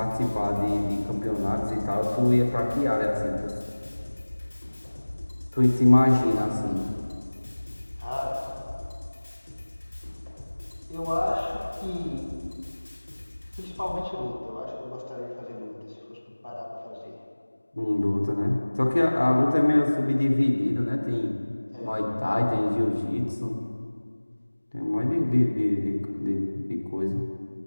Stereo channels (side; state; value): both; inverted; correlation -1.00